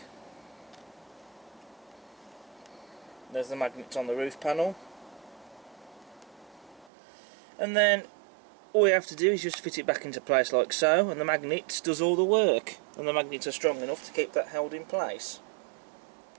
There's the magnets on the roof panel, and then all we have to do is just fit it back into place like so, and the magnets does all the work, and the magnets are strong enough to keep that held in place.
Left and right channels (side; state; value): left; drops out; at 6.9 s